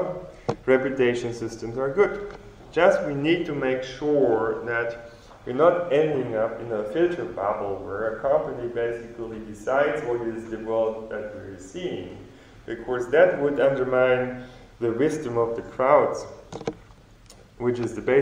reputation systems are good. Just we need to make sure that we're not ending up in a filter bubble where a company basically decides what is the world that we're seeing, because that would undermine the wisdom of the crowds, which is the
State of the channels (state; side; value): identical; both; correlation 1.00